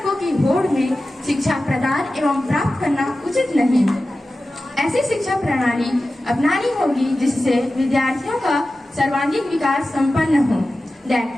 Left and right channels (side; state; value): both; normal; correlation 0.94